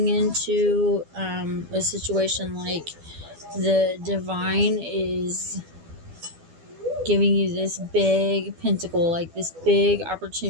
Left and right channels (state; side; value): late; left; 12 ms